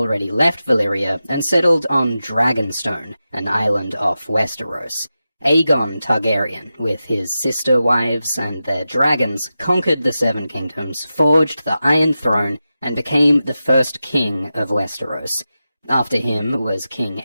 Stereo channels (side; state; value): both; inverted; correlation -0.92